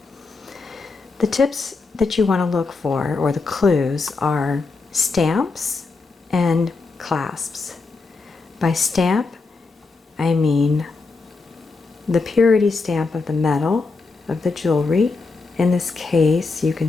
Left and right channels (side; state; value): right; quieter; 4.0 dB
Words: The tips that you want to look for, or the clues, are stamps and clasps. By stamp, I mean the purity stamp of the metal of the jewelry. In this case, you